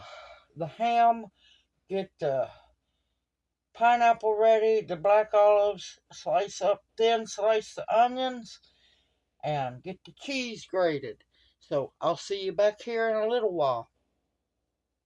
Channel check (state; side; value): identical; both; correlation 1.00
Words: ham, get the pineapple ready, the black olives, slice up thin, slice the onions, and get the cheese grated. So I'll see you back here in a little while.